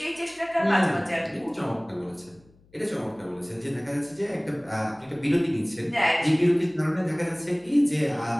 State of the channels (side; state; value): left; noise; hum, 30 dB below the sound